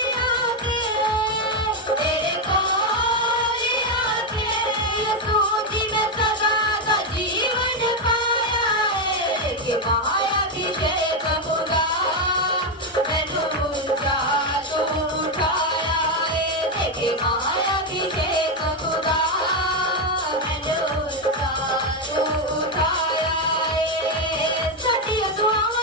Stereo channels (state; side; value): normal; both; correlation 0.06